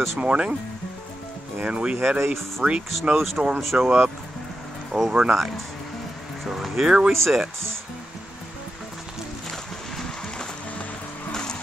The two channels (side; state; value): both; normal; correlation 0.89